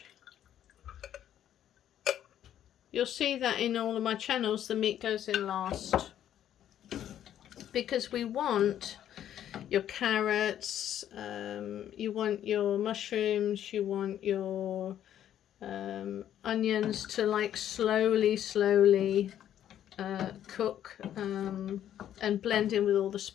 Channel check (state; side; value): quieter; right; 10.8 dB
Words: You'll see that in all of my channels the meat goes in last, because we want your carrots, you want your mushrooms, you want your onions to like slowly cook and blend in with all the